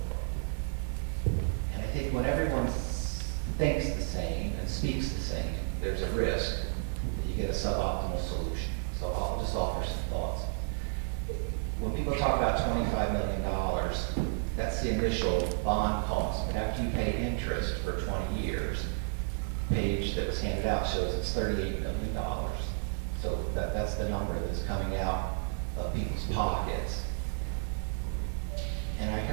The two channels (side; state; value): left; silent; digital silence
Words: And I think when everyone thinks the same and speaks the same, there's a risk that you get a suboptimal solution. So I'll just offer some thoughts. When people talk about $25 million, that's the initial bond cost. But after you pay interest for 20 years, the page that was handed out shows it's $38 million. So that's the number that's coming out of people's pockets. And I